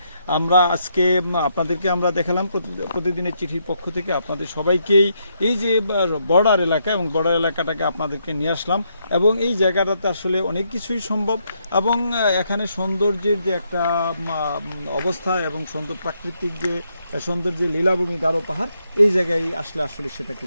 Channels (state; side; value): inverted; both; correlation -0.77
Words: আমরা আজকে আপনাদেরকে আমরা দেখালাম প্রতিদিনের চিঠির পক্ষ থেকে আপনাদের সবাইকেই এই যে বর্ডার এলাকা এবং বর্ডার এলাকাটাকে আপনাদেরকে নিয়ে আসলাম। এবং এই জায়গাটাতে আসলে অনেক কিছুই সম্ভব এবং এখানে সৌন্দর্যের যে একটা অবস্থা এবং প্রাকৃতিক যে সৌন্দর্যের লীলাভূমি গারো পাহাড়, এই জায়গায় আসলে সেটাকে